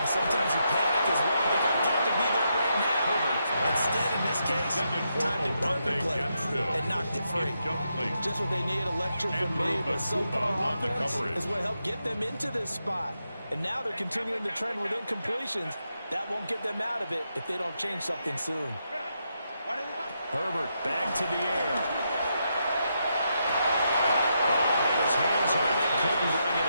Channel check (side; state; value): both; inverted; correlation -0.82